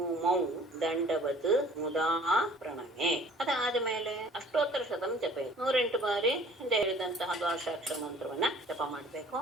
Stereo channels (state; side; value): normal; both; correlation 0.52